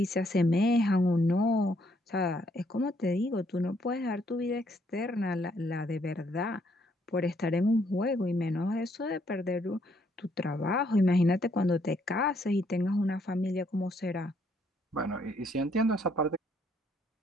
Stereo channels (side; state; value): both; normal; correlation 0.70